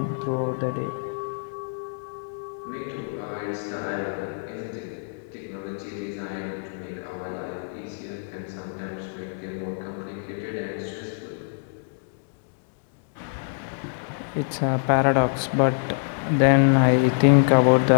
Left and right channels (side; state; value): right; silent; digital silence